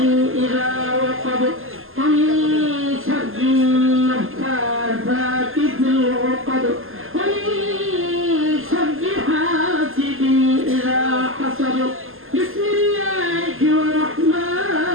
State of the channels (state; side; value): late; left; 0.60 ms